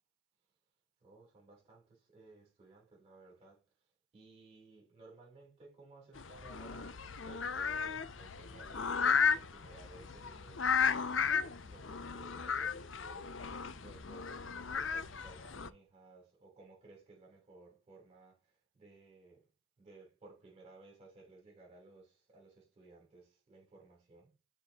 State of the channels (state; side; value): quieter; right; 5.7 dB